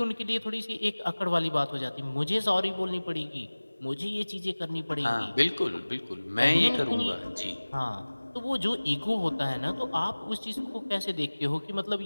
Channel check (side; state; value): both; inverted; correlation -1.00